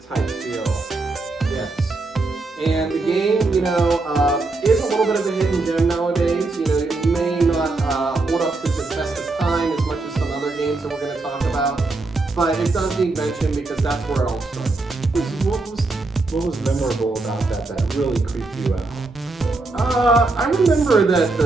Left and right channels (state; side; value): quieter; left; 3.4 dB